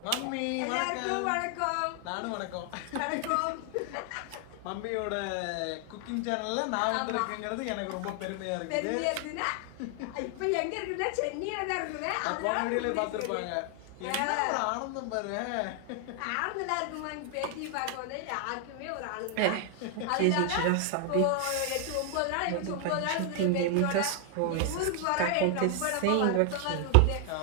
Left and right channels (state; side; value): different; both; correlation 0.00